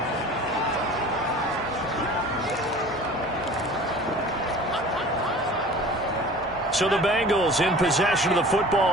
So the Bengals in possession of the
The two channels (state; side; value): normal; both; correlation 0.43